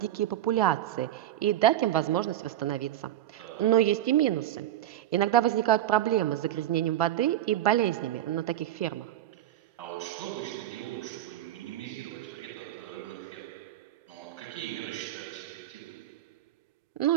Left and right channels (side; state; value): left; quieter; 12.8 dB